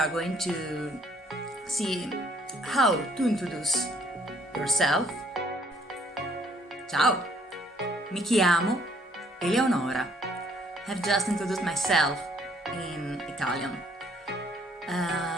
going to see how to introduce yourself. Ciao, mi chiamo Eleonora. I've just introduced myself in Italian.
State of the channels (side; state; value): both; normal; correlation 0.64